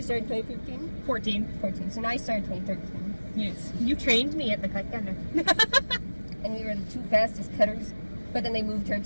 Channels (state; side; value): inverted; both; correlation -1.00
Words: started 2015? 14. So now I started 2013. Yes. You trained me at the cut gunner. And we were the two fastest cutters, but then they moved her